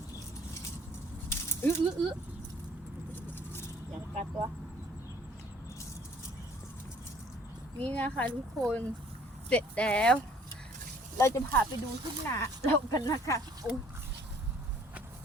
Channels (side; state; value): both; normal; correlation 0.57